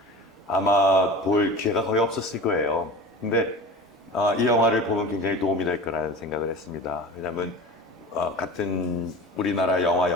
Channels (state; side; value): normal; both; correlation 0.35